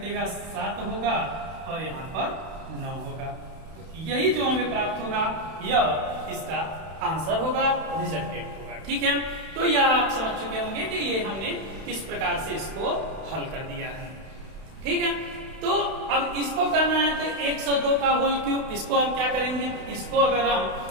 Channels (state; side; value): late; left; 31 ms